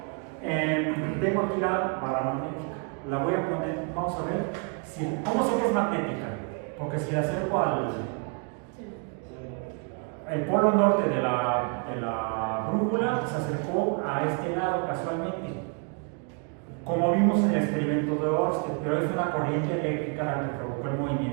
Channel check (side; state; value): left; quieter; 36.7 dB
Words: Tengo aquí la barra magnética. La voy a poner, vamos a ver. ¿Cómo sé que es magnética? Porque si la acerco el polo norte de la brújula se acercó a este lado casualmente, como vimos en el experimento de Ørsted, pero es una corriente eléctrica la que provocó el